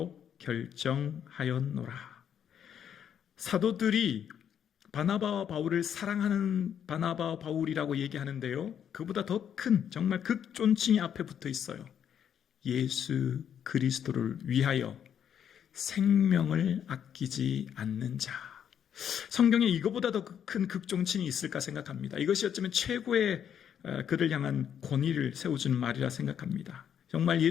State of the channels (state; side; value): quieter; right; 8.8 dB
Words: 결정하였노라. 사도들이 바나바와 바울을 사랑하는 바나바와 바울이라고 얘기하는데요, 그보다 더 큰 정말 극존칭이 앞에 붙어 있어요. 예수 그리스도를 위하여 생명을 아끼지 않는 자. 성경에 이거보다 더 큰 극존칭이 있을까 생각합니다. 이것이 어쩌면 최고의 그를 향한 권위를 세워주는 말이라 생각합니다. 정말